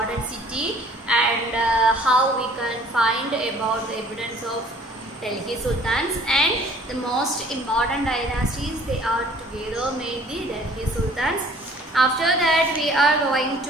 city and how we can find about the evidence of Delhi Sultans, and the most important dynasties they are together made the Delhi Sultans. After that we are going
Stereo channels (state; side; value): normal; both; correlation 0.54